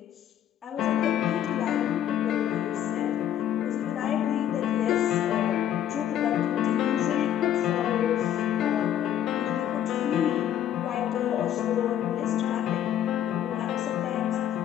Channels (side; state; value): right; quieter; 10.8 dB